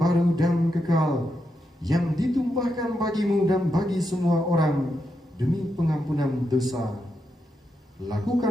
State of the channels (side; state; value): both; normal; correlation 0.84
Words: dan kekal, yang ditumpahkan bagimu dan bagi semua orang demi pengampunan dosa.